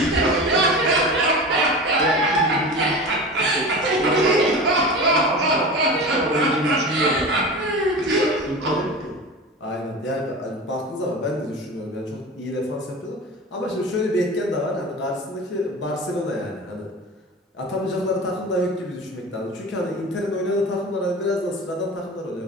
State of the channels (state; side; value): normal; both; correlation 0.32